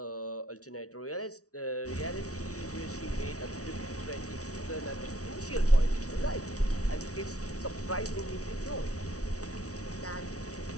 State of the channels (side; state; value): right; late; 0.66 ms